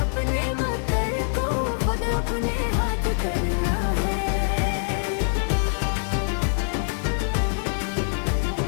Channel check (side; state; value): right; silent; digital silence